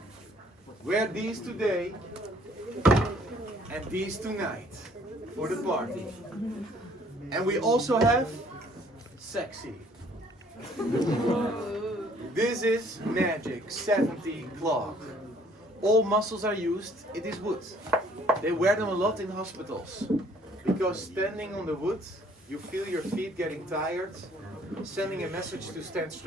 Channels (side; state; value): both; normal; correlation 0.60